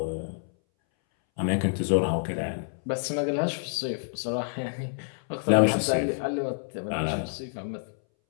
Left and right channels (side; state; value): right; silent; 59 dB below the other